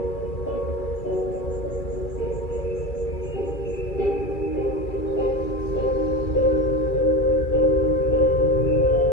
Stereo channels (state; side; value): late; right; 2.3 ms